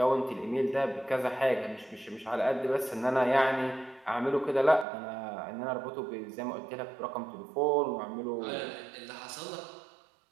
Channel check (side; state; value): left; drops out; at 4.9 s